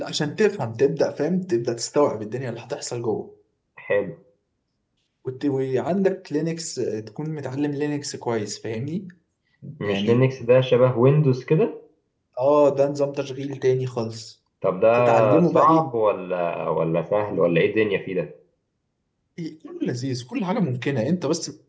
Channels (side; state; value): both; identical; correlation 1.00